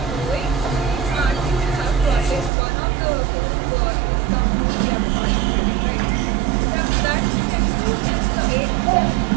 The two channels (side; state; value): left; drops out; at 2.5 s